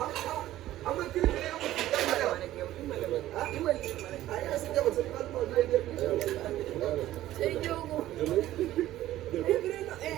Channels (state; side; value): quieter; left; 14.3 dB